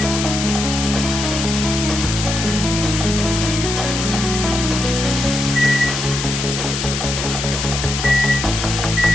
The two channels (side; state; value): left; noise; hiss, 4 dB below the sound